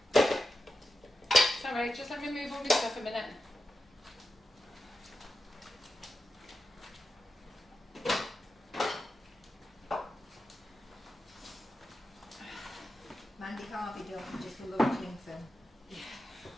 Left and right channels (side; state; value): both; normal; correlation 0.90